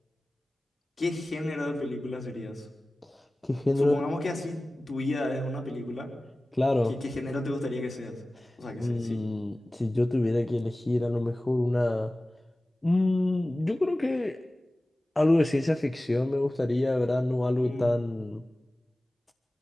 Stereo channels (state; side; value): normal; both; correlation 0.97